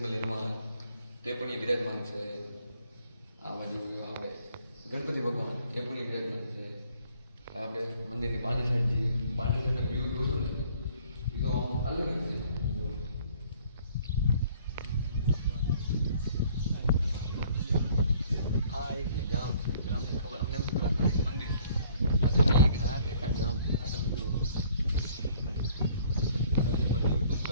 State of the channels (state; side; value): inverted; both; correlation -0.58